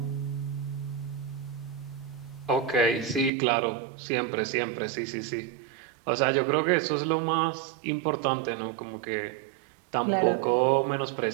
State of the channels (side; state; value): left; drops out; at 3.3 s